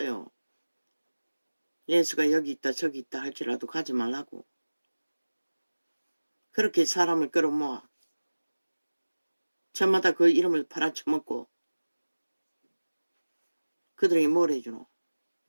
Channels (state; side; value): inverted; both; correlation -1.00